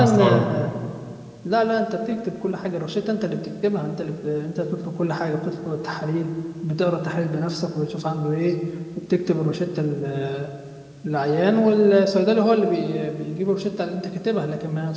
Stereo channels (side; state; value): both; identical; correlation 1.00